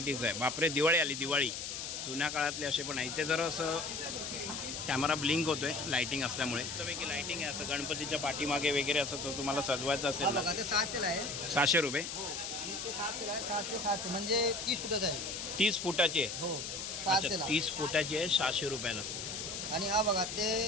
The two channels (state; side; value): noise; left; hiss, 5 dB below the sound